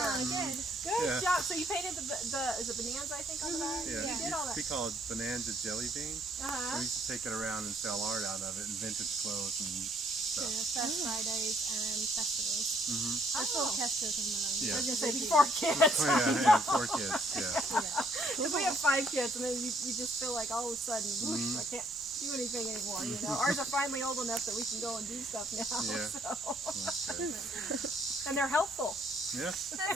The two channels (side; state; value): both; normal; correlation 0.66